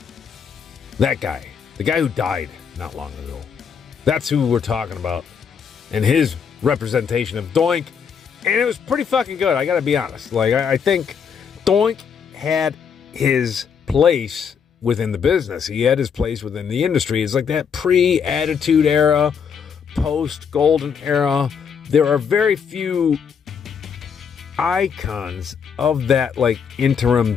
That guy. The guy who died not long ago. That's who we're talking about. And his representation of Doink. And it was pretty fucking good, I gotta be honest. Like, I think Doink had his place within the business. He had his place within the industry. It's like that pre-Attitude Era, post-Golden Era. There are very few icons of that, like, interim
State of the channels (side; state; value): right; quieter; 6.9 dB